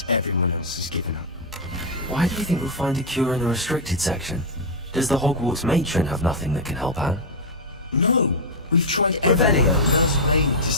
everyone else has given up. Why do you think we'll find a cure in the restricted section? Does the Hogwarts matron have nothing that can help Anne? No! We've tried every way to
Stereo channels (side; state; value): both; normal; correlation -0.01